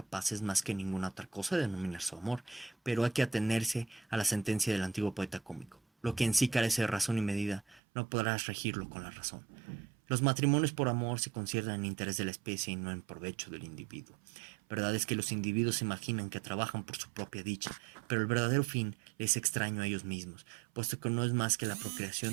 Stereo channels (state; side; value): drops out; left; at 7.8 s